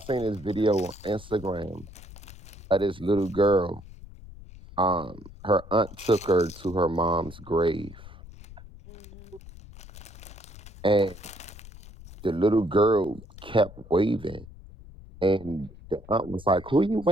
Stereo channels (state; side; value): noise; left; rumble, 17 dB below the sound